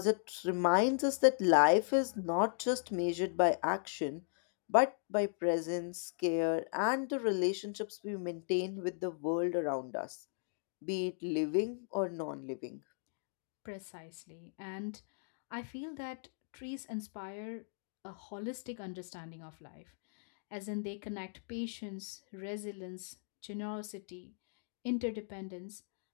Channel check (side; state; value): right; silent; digital silence